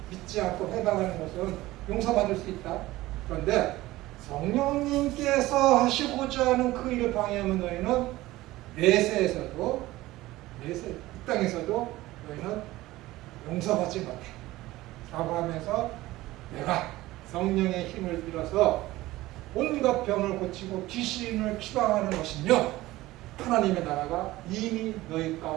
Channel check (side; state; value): left; quieter; 17.6 dB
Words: 믿지 않고 해방하는 것은 용서받을 수 있다. 그런데 성령님께서 하시고자 하는 그 일을 방해하면 너희는 내세에서도 이 땅에서도 너희는 용서받지 못해 라고 하면서 내가 성령의 힘을 빌어서 온갖 병을 고치고 귀신을 추방하는 것이며 하나님의 나라가 이미 너희